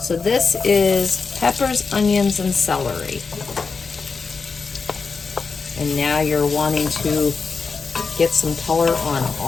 this is peppers, onions, and celery. And now you're wanting to get some color on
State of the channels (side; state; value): right; quieter; 4.8 dB